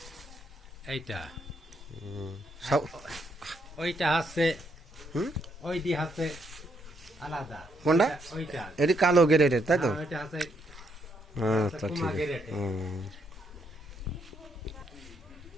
এইটা সব ওইটা হচ্ছে হুম ওইটি হচ্ছে আলাদা। কোনটা? ওইটা এটি কালো গ্রেডের, তাই তো? ওইটা হচ্ছে আচ্ছা ঠিক কুমা আছে। গেরেটে।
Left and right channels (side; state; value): both; normal; correlation 0.75